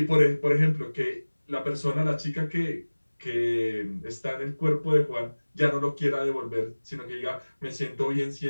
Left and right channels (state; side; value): inverted; both; correlation -1.00